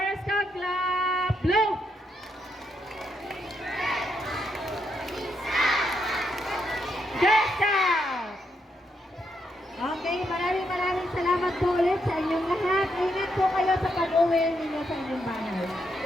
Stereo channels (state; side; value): normal; both; correlation 0.79